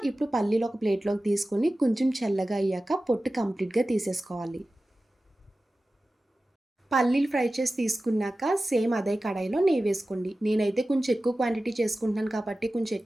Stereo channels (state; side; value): normal; both; correlation 0.95